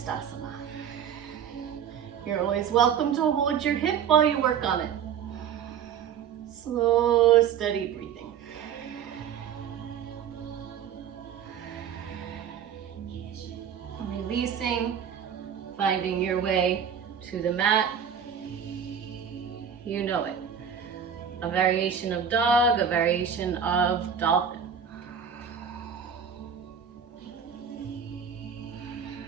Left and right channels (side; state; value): left; quieter; 7.8 dB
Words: You're always welcome to hold your hip while you work on it. Slow, steady breathing. Releasing, finding your way to the mat. You know it. A variation of dog, a variation of dolphin.